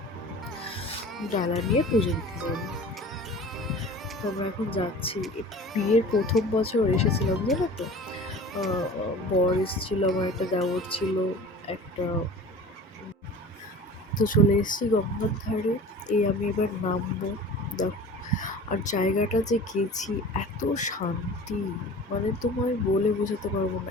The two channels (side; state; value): both; normal; correlation 0.40